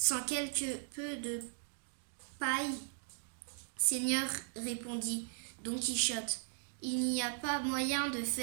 quelque peu de paille. Seigneur, répondit Don Quichotte, il n'y a pas moyen de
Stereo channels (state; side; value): silent; left; digital silence